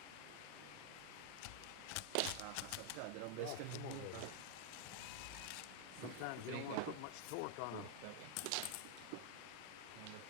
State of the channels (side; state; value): both; different; correlation 0.00